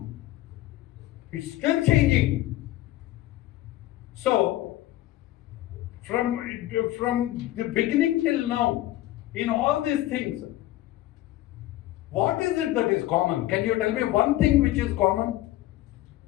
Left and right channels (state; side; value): quieter; right; 15.5 dB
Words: It's still changing. So, from the beginning till now, in all these things, what is it that is common? Can you tell me one thing which is common?